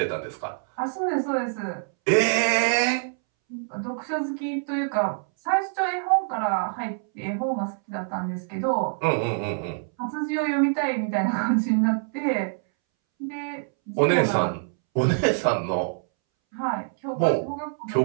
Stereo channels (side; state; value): left; silent; 61 dB below the other